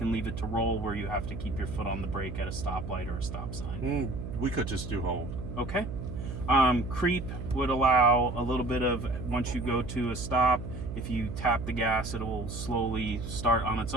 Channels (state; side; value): noise; right; hum, 7 dB below the sound